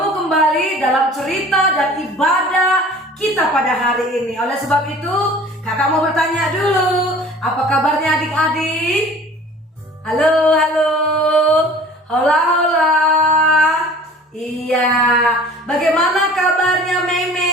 kembali dalam cerita dan ibadah kita pada hari ini. Oleh sebab itu, kakak mau bertanya dulu, apa kabarnya adik-adik? Halo, halo, hola, hola. Iya, bagaimana kabarnya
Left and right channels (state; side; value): normal; both; correlation 0.46